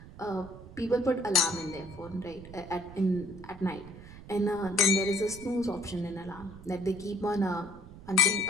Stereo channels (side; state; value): right; noise; rumble, 16 dB below the sound